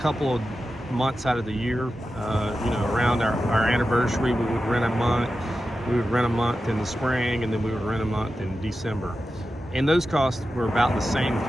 of months out of the year. Around our anniversary, we would rent a month We would rent a month in the spring, and then we would rent a month in December. And those costs were about the same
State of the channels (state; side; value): normal; both; correlation 0.92